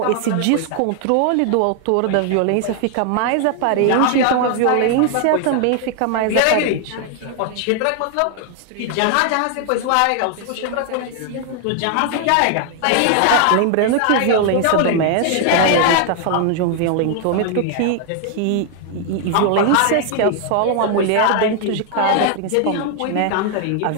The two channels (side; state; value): both; different; correlation 0.00